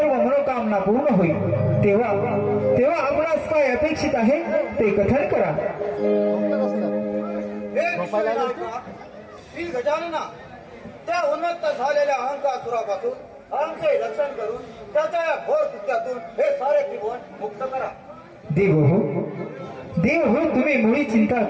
मनोकामना पूर्ण होईल. तेव्हा आपणास काय अपेक्षित आहे ते कथन करा. श्री गजानना, त्या उन्मत्त झालेल्या अहंकासुरापासून आमचे रक्षण करून त्याच्या या घोर कृत्यातून हे सारे त्रिभुवन मुक्त करा. देव हो तुम्ही मुळी चिंता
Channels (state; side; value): identical; both; correlation 1.00